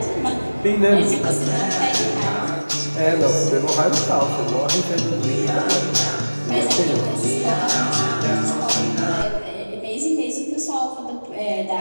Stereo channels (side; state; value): both; inverted; correlation -1.00